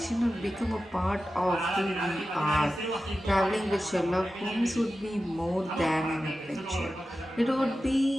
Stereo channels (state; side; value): normal; both; correlation 0.93